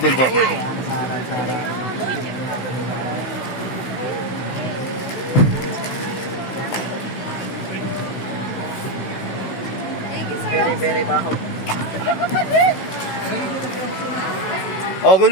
po. Very, very baho. Oh, okay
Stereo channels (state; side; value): late; right; 16 ms